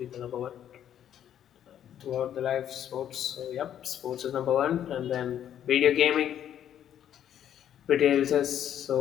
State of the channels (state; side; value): quieter; right; 10.2 dB